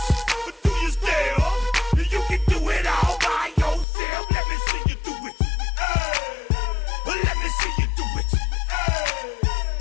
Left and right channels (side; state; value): right; drops out; at 3.9 s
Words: but do you still? You can do it all by yourself. Let me see you do it. Let me see you do it.